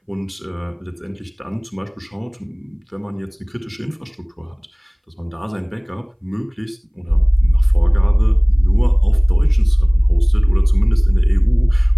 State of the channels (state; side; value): identical; both; correlation 1.00